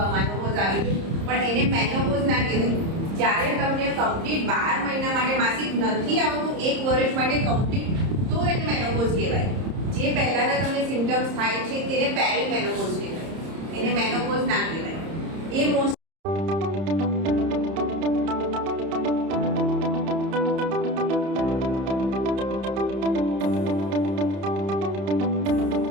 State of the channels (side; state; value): left; late; 30 ms